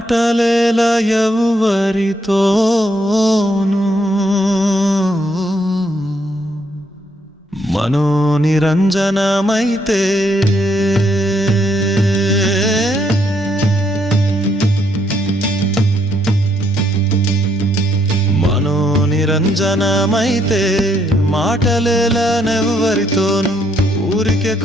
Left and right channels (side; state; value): both; normal; correlation 0.73